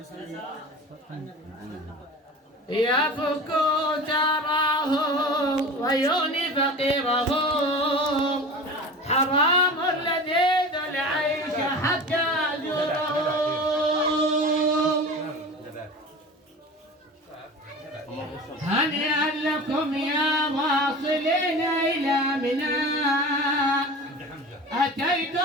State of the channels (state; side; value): normal; both; correlation 0.34